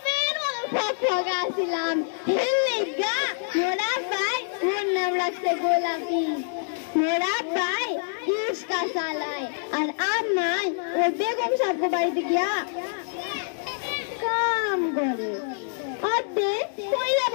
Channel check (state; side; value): silent; right; digital silence